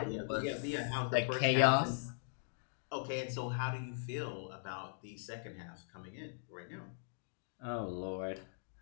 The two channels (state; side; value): silent; right; digital silence